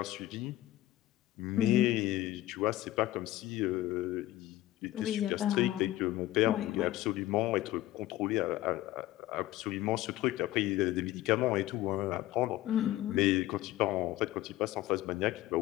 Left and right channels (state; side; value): quieter; right; 15.6 dB